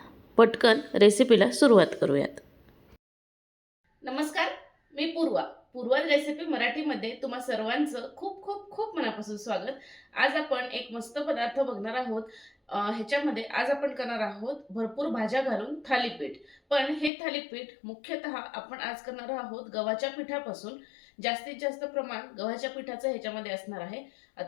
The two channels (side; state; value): right; drops out; at 17.1 s